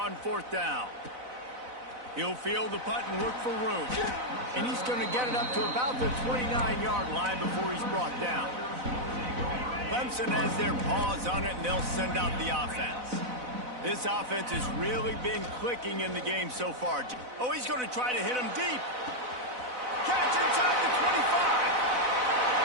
4th down. He'll field the punt and look for room. And he's going to get it up to about the 29-yard line before he's brought down. Clemson has their paws on it, and they'll send out the offense. This offense has really been clicking in the game so far. Oh, he's going to try to hit him deep. Catch inside the 25.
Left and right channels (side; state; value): left; late; 4.0 ms